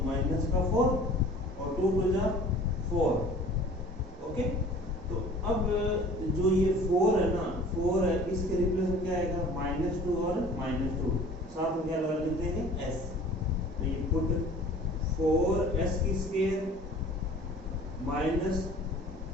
माइनस का 4 और 2 टू जा 4. ओके, तो अब जो ये 4 है ना, 4 है, इसके रिप्लेस में क्या आएगा, -2 और -2. साथ में क्या लगा देते हैं s. तो ये पुट 4s की स्क्वायर माइनस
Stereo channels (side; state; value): both; normal; correlation 0.47